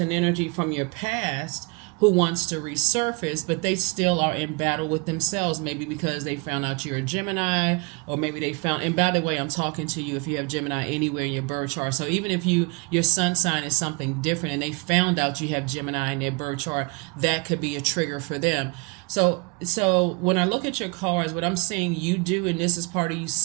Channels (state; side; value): quieter; left; 28.7 dB